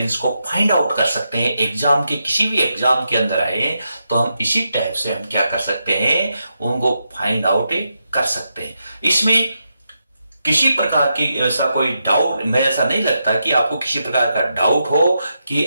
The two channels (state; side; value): inverted; both; correlation -0.85